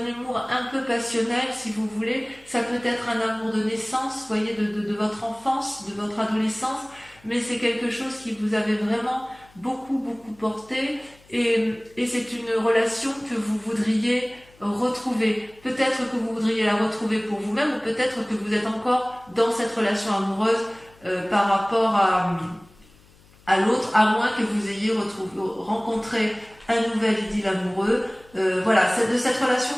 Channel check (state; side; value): noise; left; hum, 28 dB below the sound